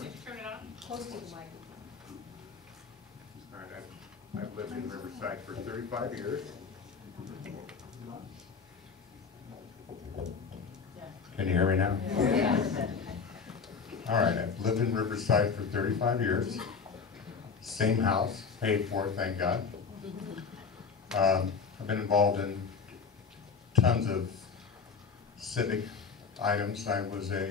me? Turn it on. Close to the microphone. All right, I've lived in Riverside for 35 years. Can you hear me now? All right, I've lived in Riverside for 35 years. Same house, paid for, thank God. I've been involved in tons of civic items. I was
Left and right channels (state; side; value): quieter; right; 5.5 dB